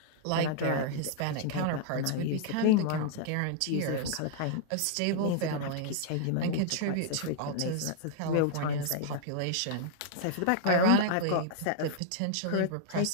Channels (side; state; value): both; different; correlation -0.01